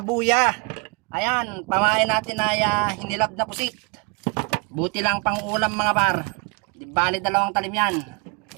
Ayan, pamain natin ay hinilab na pusit. Buti lang pang ulam mga par. Di bali dalawang talim yan.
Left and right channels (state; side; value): quieter; left; 32.2 dB